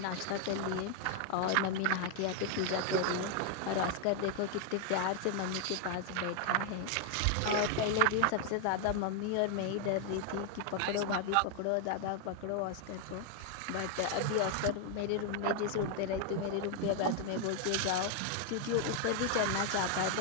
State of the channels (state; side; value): different; both; correlation 0.00